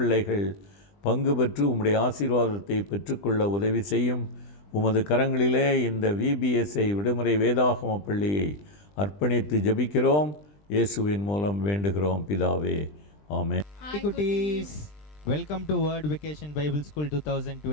பங்கு பெற்று உம்முடைய ஆசீர்வாதத்தை பெற்றுக்கொள்ள உதவி செய்யும். உமது கரங்களிலே இந்த விபிஎஸ்ஐ விடுமுறை வேதாகம பள்ளியை அர்ப்பணித்து ஜெபிக்கிறோம். இயேசுவின் மூலம் வேண்டுகிறோம் பிதாவே, ஆமென். Hi குட்டீஸ், welcome to word vacation Bible school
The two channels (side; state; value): right; late; 20 ms